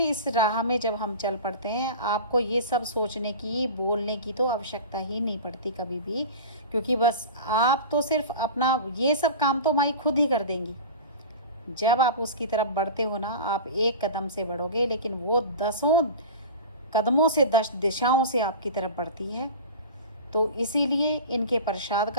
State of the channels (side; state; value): both; inverted; correlation -0.32